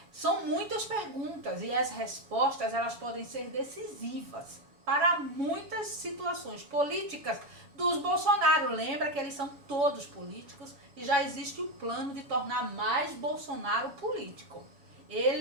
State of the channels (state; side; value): late; left; 7.1 ms